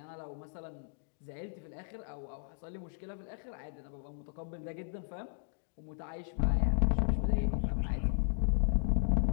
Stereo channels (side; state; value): right; silent; digital silence